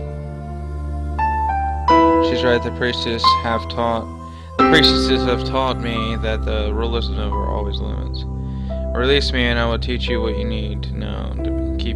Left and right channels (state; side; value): identical; both; correlation 1.00